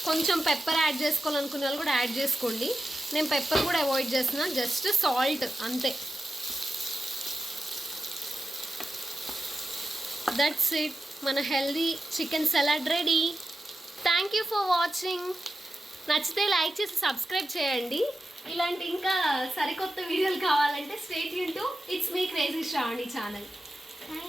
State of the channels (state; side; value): normal; both; correlation 0.91